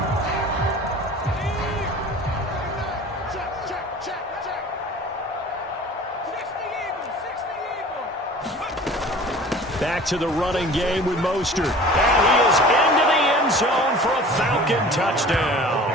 Back to the running game with Mostert. And he is into the end zone for a Falcon touchdown.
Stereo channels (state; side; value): normal; both; correlation 0.43